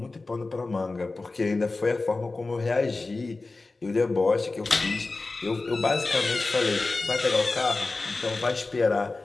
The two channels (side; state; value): right; quieter; 3.5 dB